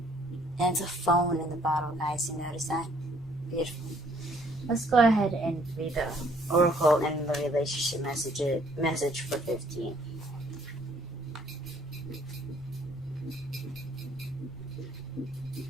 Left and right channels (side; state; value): both; normal; correlation 0.62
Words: And it's a phone in the bottle, guys. You notice that? Beautiful. Let's go ahead and read the oracle and the relationship message for 15.